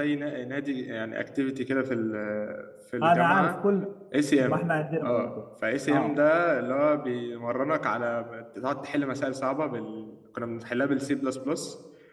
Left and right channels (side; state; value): both; identical; correlation 1.00